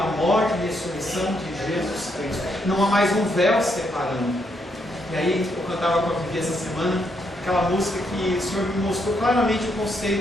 morte e ressurreição de Jesus Cristo. Não há mais um véu separando. E aí eu cantava com a Vivi essa semana aquela música que o Senhor me mostrou claramente o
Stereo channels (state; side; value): normal; both; correlation 0.76